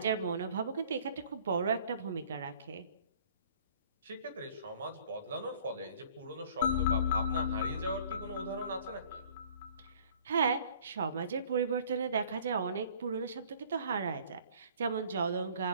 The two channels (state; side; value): inverted; both; correlation -0.53